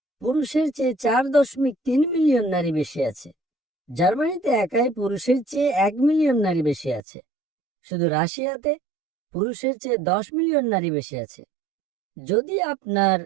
পুরুষের চেয়ে 4.3 মিলিয়ন নারী বেশি আছে। জার্মানিতে একাই পুরুষের চেয়ে 1 মিলিয়ন নারী বেশি আছে। শুধু রাশিয়াতে পুরুষের চেয়ে 10 মিলিয়ন নারী বেশি আছে। যদি আপনার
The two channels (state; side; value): drops out; left; at 7.0 s